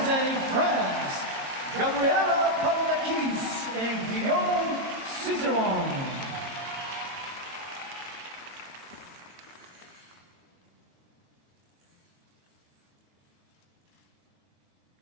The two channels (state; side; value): late; left; 22 ms